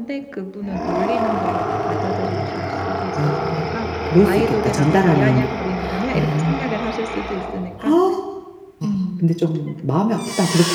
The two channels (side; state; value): both; identical; correlation 1.00